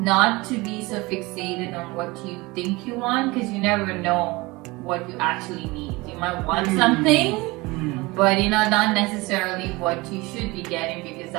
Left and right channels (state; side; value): quieter; left; 22.8 dB